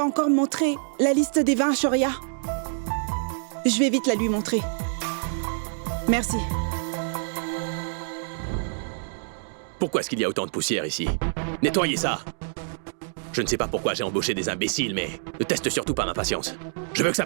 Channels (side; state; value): left; silent; digital silence